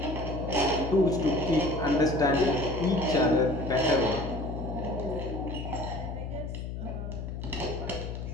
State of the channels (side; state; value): left; noise; hum, 6 dB below the sound